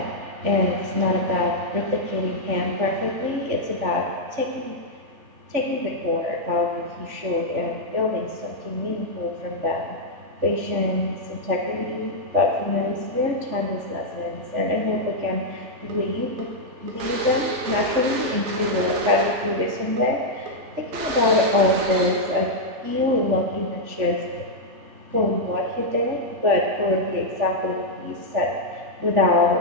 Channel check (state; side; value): late; left; 3.4 ms